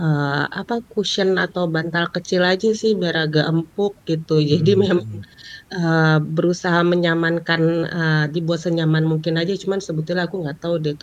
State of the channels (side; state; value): both; identical; correlation 1.00